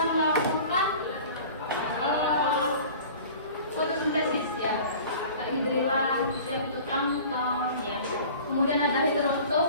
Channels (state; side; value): inverted; both; correlation -0.43